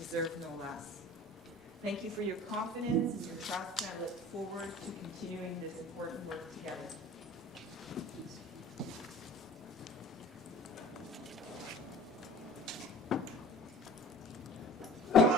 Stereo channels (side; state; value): both; normal; correlation 0.44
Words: no less. Thank you for your confidence and your trust, and I look forward to continuing this important work together.